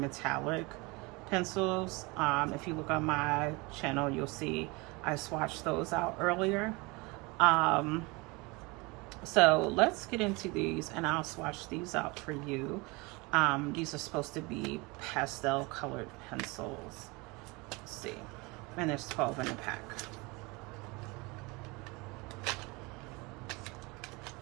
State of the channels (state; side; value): quieter; left; 25.8 dB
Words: pencils. If you look on my channel, you'll see I swatched those out earlier. So let's get into these and I'll swatch these out for you. These are supposed to be pastel colored pencils. Let's see. And there's 12 in a pack.